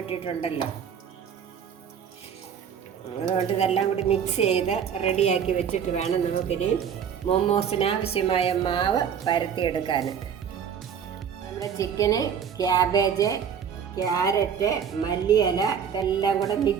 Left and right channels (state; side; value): quieter; left; 7.7 dB